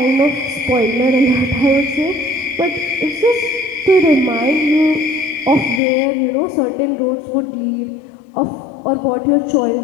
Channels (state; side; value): drops out; right; at 5.8 s